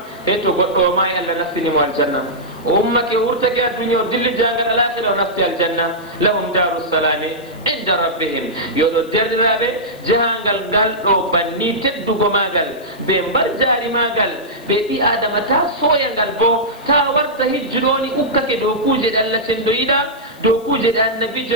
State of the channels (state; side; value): noise; left; hiss, 26 dB below the sound